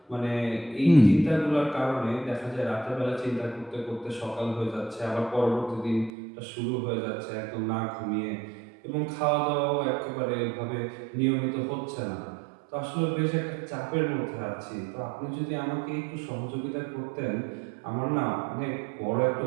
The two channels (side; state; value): left; drops out; at 6.1 s